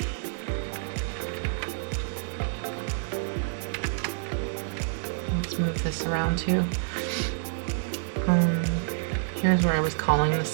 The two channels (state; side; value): silent; left; digital silence